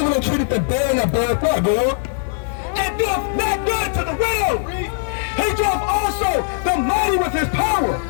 entreateth the barren and beareth not, bro. And doeth not good to the widow. He doth also the mighty with his power.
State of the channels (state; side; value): silent; right; digital silence